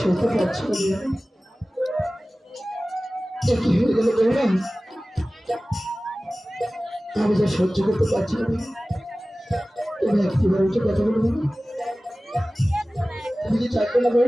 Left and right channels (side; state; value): both; normal; correlation 0.97